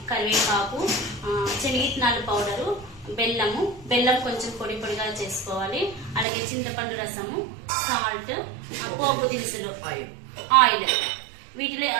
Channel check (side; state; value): left; drops out; at 6.2 s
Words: కరివేపాకు, శనగిత్తనాలు పౌడరు, బెల్లం కొంచెం పొడి పొడిగా చేసుకోవాలి. అలాగే చింతపండు రసము, సాల్ట్, పోపు దినుసులు, ఆయిల్. వీటిలో